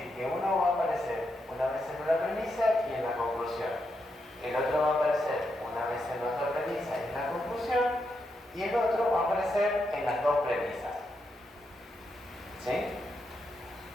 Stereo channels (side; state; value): both; normal; correlation 0.83